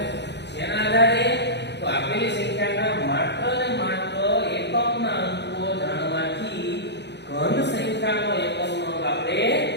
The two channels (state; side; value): late; right; 0.50 ms